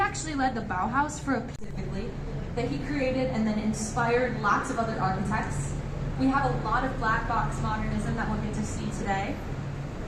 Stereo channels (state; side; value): identical; both; correlation 1.00